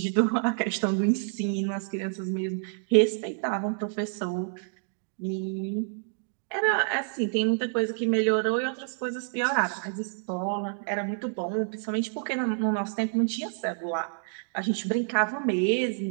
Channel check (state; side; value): silent; left; digital silence